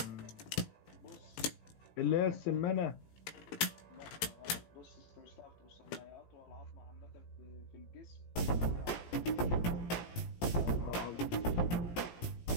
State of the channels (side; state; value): right; late; 17 ms